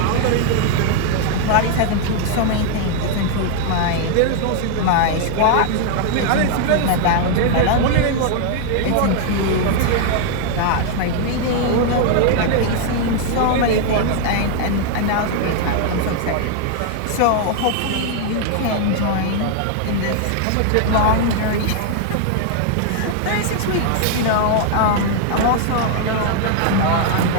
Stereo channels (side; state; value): both; different; correlation 0.00